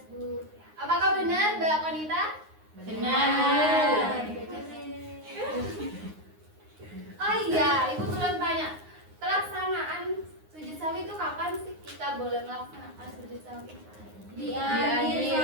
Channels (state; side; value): late; left; 9.6 ms